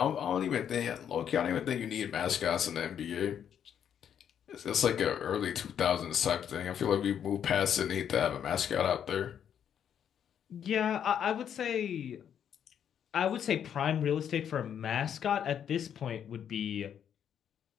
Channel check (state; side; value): quieter; right; 8.8 dB